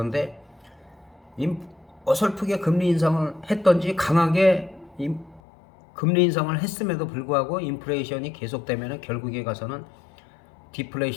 어설프게 금리 인상을 했던지 강하게 금리 인상을 했음에도 불구하고 인플레이션이 계속되면 결국에 가서는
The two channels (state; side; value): drops out; right; at 5.4 s